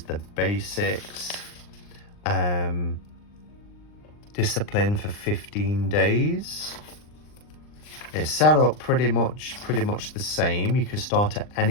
basics. Discipline for 15 days. It's set up pretty much the same. You can start at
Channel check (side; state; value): right; late; 39 ms